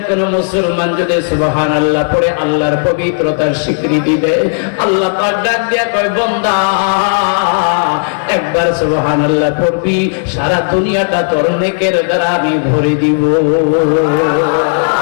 কোন মুসলমান যদি সুবহানাল্লাহ পড়ে আল্লাহর পবিত্রতার স্বীকৃতি দেয়, আল্লাহ পাক ডাক দিয়া কয় বান্দা একবার সুবহানাল্লাহ পড়বি, সারা দুনিয়াটা তোর নেকের দ্বারা আমি ভরে দিব।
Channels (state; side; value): silent; right; digital silence